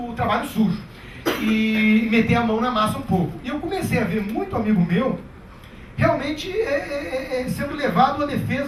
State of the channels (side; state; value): both; identical; correlation 1.00